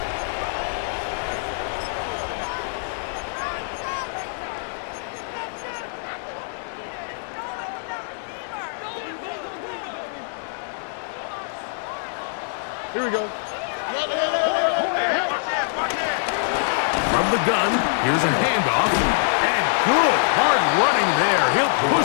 Here we go. From the gun, here's a handoff. And good, hard running there. He'll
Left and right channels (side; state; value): right; silent; digital silence